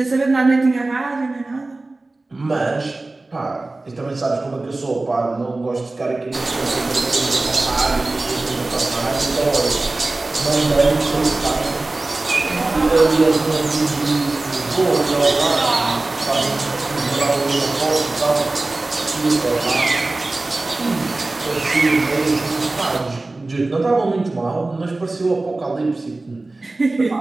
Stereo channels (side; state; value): left; quieter; 3.1 dB